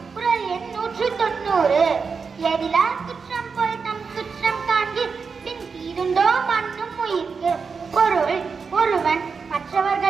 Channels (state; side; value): quieter; left; 5.3 dB